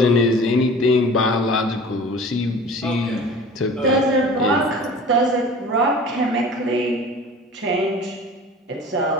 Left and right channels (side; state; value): both; normal; correlation 0.42